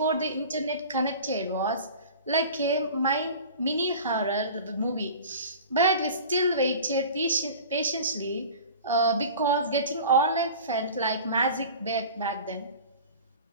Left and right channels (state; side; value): inverted; both; correlation -0.39